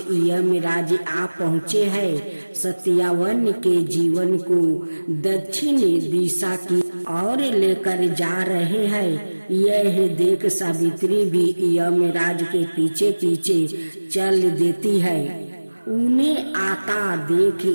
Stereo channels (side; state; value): both; inverted; correlation -1.00